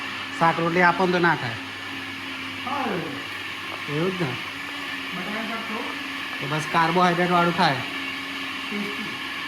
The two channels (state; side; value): identical; both; correlation 1.00